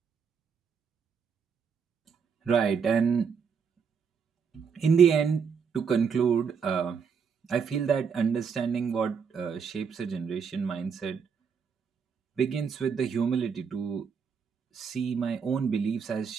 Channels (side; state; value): left; quieter; 6.4 dB